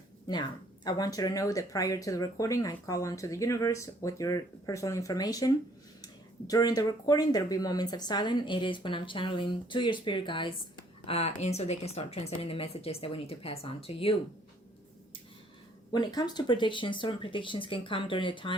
Now, I want you to know that prior to the recording, I call on to the universe with your personal information. During the recording, there will be moments of silence. It is when I'm channeling to your spirit guides, and so they can start transmitting the messages that we need to pass on to you. When it comes to predictions, certain predictions can come during the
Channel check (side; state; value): both; normal; correlation 0.62